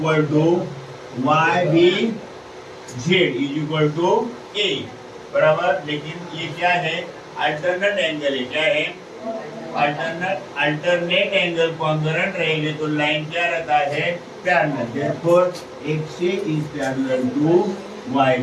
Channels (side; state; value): both; identical; correlation 1.00